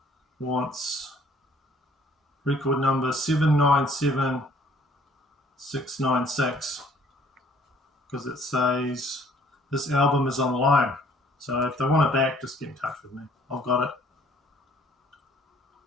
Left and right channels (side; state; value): both; normal; correlation 0.59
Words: wants record number 797696, because it says this album is on loan. So if they want it back, just get in touch with me. I've got it.